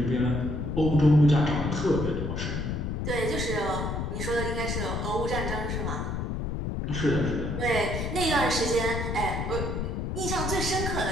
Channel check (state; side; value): noise; left; rumble, 2 dB below the sound